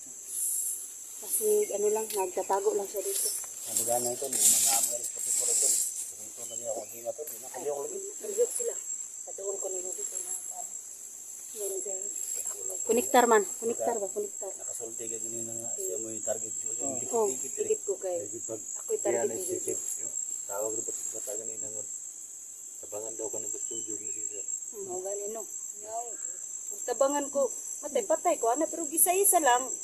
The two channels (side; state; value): both; identical; correlation 1.00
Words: Kasi ano lang nagtatago lang siya dito. Sabi ganang tol, nanamo alis pa pipura tol. Ito na niya akong hinga tol, nakaliw ko lagi. Nagiyok sila. Patuon ko nila dito na ano. Yan girl. Kuniktar man, kuniktar ba? Kuniktar. Nakasulti ka ganina nga siya mo yung target ko. Oh, higit ko kay. Ako'y target ko dito. Tawag rin pa sa ganina nga. Tabangan daw ka ng studio ni Cesar. Ang ganino. Yung tabangan ko, patay ko ana pero gisa-isa lang.